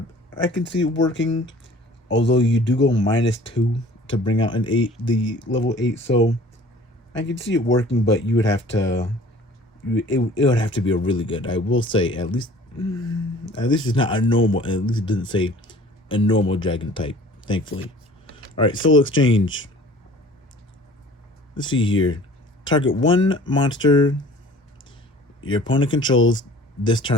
I can see it working, although you do go -2 to bring out an 8, the level 8. So I can see it working, but you would have to. It would have to be a really good. I will say at least it's not a normal. At least it doesn't say a normal dragon type. Thankfully. All right, Soul Exchange. Let's see here. Target 1 monster your opponent controls this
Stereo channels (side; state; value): both; normal; correlation 0.49